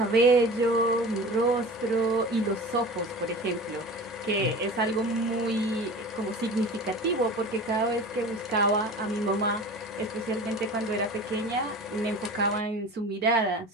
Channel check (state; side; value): normal; both; correlation 0.36